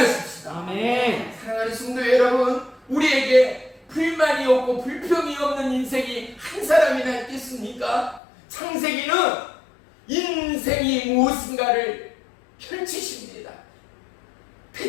아멘. 사랑하는 성도 여러분, 우리에게 불만이 없고 불평이 없는 인생이 한 사람이나 있겠습니까? 창세기는 인생이 무엇인가를 펼치십니다.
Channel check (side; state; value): right; drops out; at 8.2 s